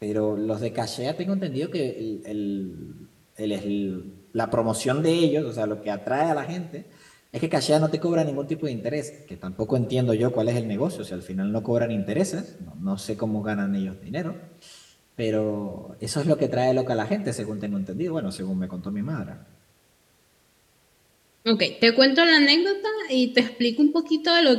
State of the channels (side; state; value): both; identical; correlation 1.00